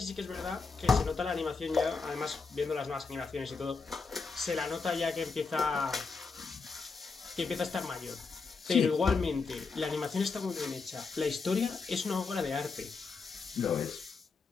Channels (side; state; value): right; quieter; 4.6 dB